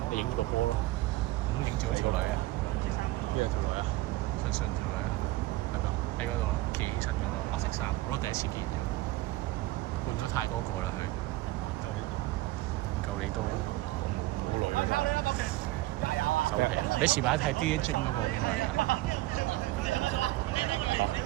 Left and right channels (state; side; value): quieter; left; 18.1 dB